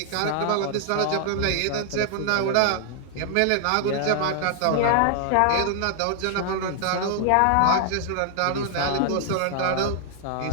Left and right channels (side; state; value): both; different; correlation 0.00